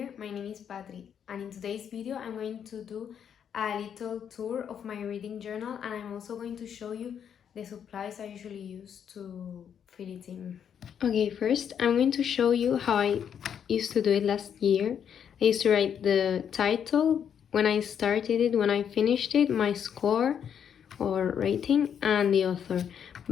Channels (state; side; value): quieter; right; 8.3 dB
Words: my name is Patri, and in today's video I'm going to do a little tour of my reading journal, and I'm also going to show you the supplies I usually use to fill it in. Okay, first I'm going to show you how I used to do it last year. I used to write the title, when I started it, when I finished it, my score or rating, and the author.